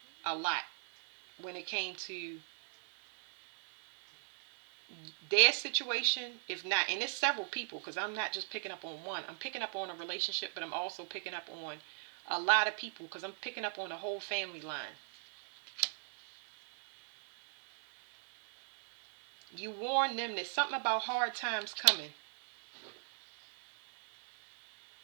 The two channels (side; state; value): left; silent; 53 dB below the other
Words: a lot when it came to their situation. If not, and it's several people, because I'm not just picking up on one. I'm picking up on a relationship, but I'm also picking up on a lot of people, because I'm picking up on the whole family line. You warn them that something about hard times coming.